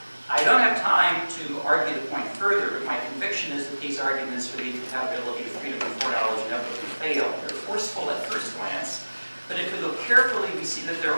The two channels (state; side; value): inverted; both; correlation -1.00